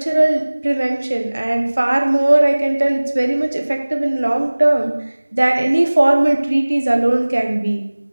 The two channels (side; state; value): both; inverted; correlation -1.00